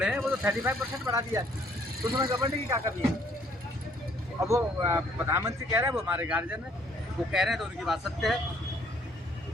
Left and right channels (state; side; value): normal; both; correlation 0.63